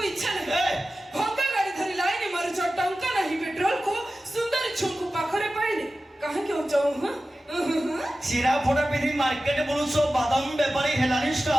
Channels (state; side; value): normal; both; correlation 0.95